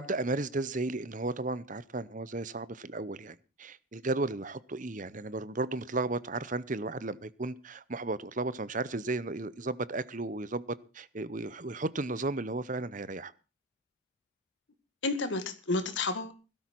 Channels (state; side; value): normal; both; correlation 0.22